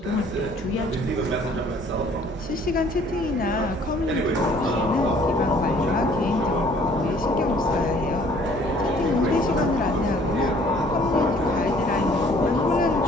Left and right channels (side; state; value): both; normal; correlation 0.57